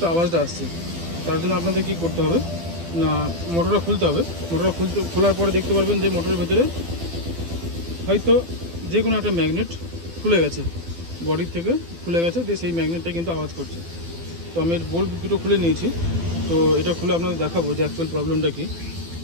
আওয়াজটা আসছে। তার জন্য আপনাদের কী করতে হবে না, মোটরটা খুলতে হবে। মোটরটা খোলার পরে দেখতে পারবেন যে মোটরের ভেতরে হয়তো যে কোনো একটা ম্যাগনেট খুলে গেছে, বডির থেকে খুলে গেছে, দিয়ে সেই ম্যাগনেটটা কিন্তু আওয়াজ করছে। তো আমি বোল্ট দুটো খুলে নিয়েছি, তো এটা খুলে আপনাদের দেখাবো যে অ্যাকচুয়াল প্রবলেমটা কী।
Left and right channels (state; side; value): late; left; 12 ms